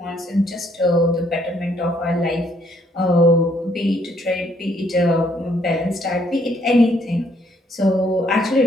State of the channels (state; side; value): normal; both; correlation 0.68